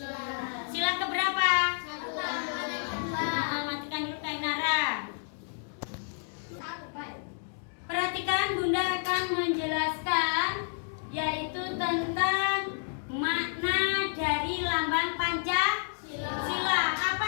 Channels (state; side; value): silent; right; digital silence